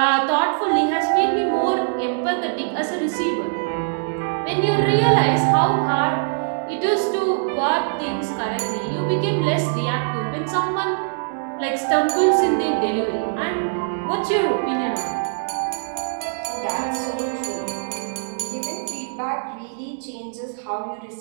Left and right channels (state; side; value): silent; left; digital silence